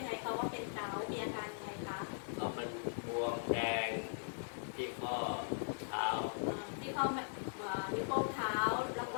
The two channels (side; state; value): right; silent; 51 dB below the other